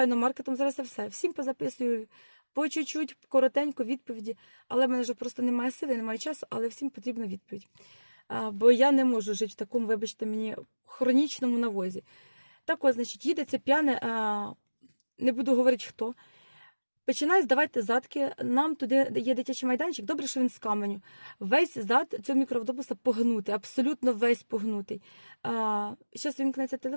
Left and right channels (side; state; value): both; inverted; correlation -1.00